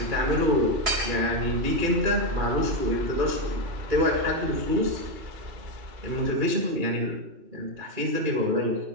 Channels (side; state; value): left; late; 2.4 ms